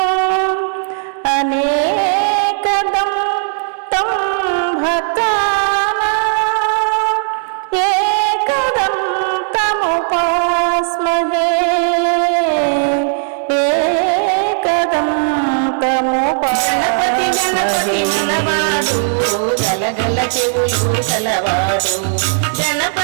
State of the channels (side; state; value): left; silent; 68 dB below the other